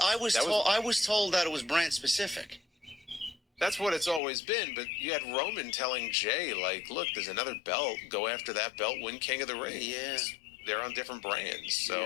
was told that it was brand specific. That's what it's always been, but you had Roman telling Jay, like, look, there's another belt. Go after that belt, win King of the Ring. Yeah. They're on different brands. So,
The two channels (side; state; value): right; drops out; at 4.2 s